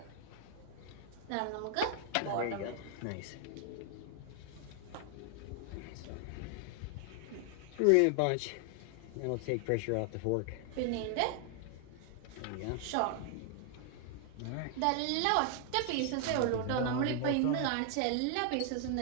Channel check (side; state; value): both; different; correlation 0.00